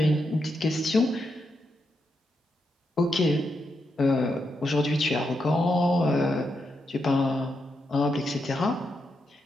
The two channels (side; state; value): both; normal; correlation 0.83